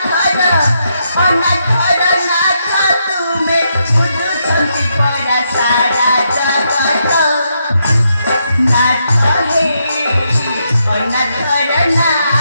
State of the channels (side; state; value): both; inverted; correlation -0.80